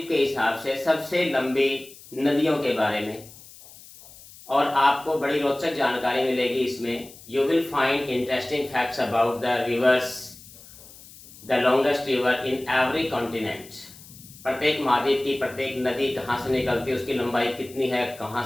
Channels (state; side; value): noise; left; hiss, 20 dB below the sound